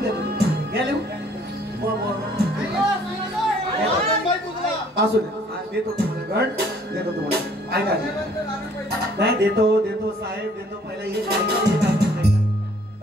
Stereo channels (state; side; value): normal; both; correlation 0.59